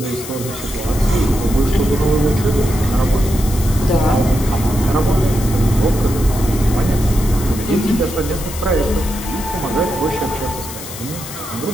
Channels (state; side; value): noise; left; hiss, 11 dB below the sound